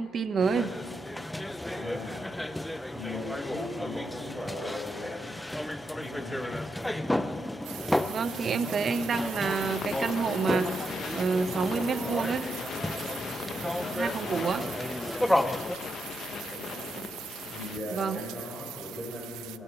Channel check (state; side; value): normal; both; correlation 0.83